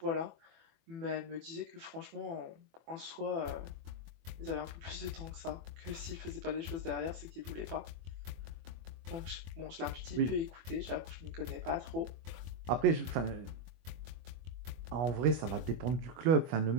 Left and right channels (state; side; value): late; left; 24 ms